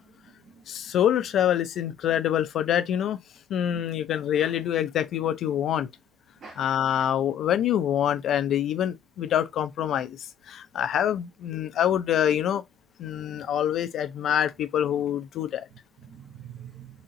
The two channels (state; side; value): quieter; right; 9.8 dB